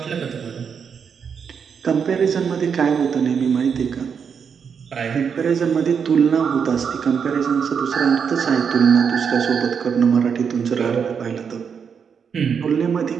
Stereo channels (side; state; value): left; quieter; 6.7 dB